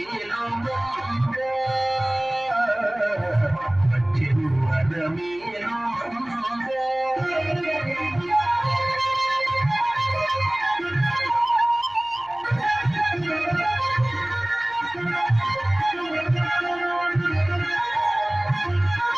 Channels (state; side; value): noise; left; hum, 30 dB below the sound